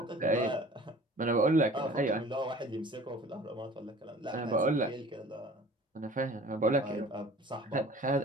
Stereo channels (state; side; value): normal; both; correlation 0.46